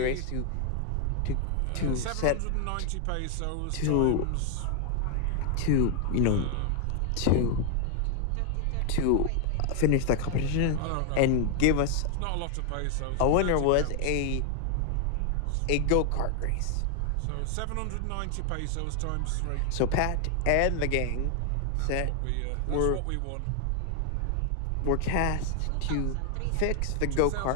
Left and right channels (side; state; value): both; different; correlation 0.00